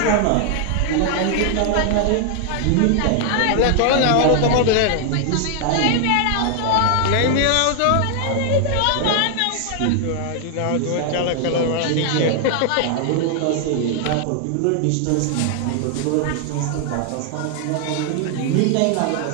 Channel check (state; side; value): different; both; correlation 0.00